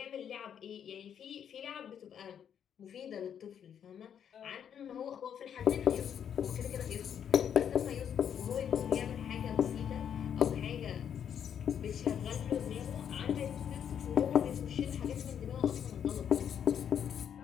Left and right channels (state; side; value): quieter; right; 8.6 dB